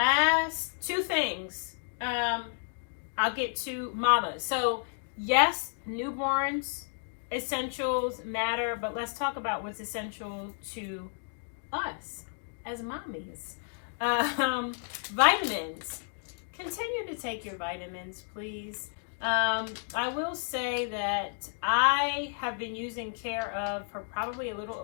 two things. I'll get to mamas. So yes, newborns essentials matter, but let's talk about what's essential to us as mommies. Vitamins. Continue to take your vitamins, please. I will say that I have been using Care Of for probably a little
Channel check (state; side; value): silent; right; digital silence